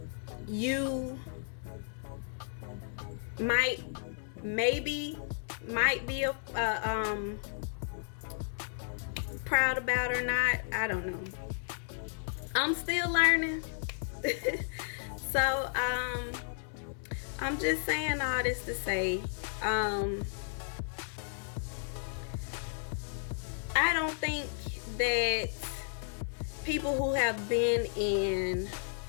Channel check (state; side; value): silent; right; 55 dB below the other